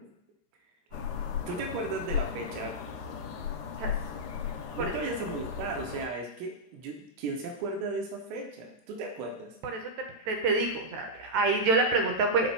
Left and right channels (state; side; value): late; left; 14 ms